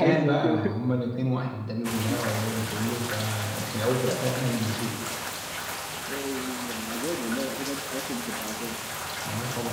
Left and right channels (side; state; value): both; identical; correlation 1.00